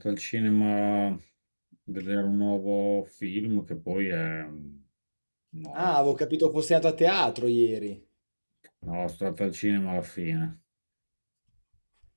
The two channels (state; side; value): inverted; both; correlation -1.00